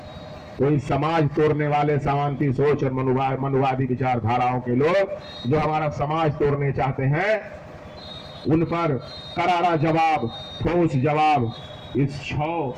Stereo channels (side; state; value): both; identical; correlation 1.00